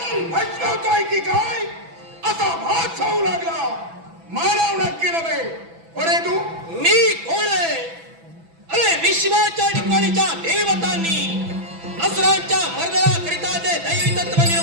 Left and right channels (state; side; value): late; left; 6.0 ms